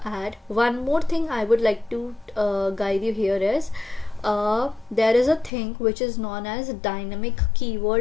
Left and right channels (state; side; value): drops out; right; at 5.5 s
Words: add one more thing. I would like to guide you here is there is a thing which is known as dynamic